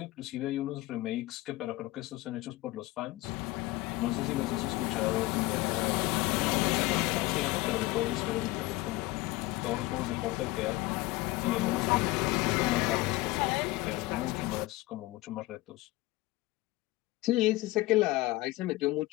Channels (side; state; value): right; quieter; 19.5 dB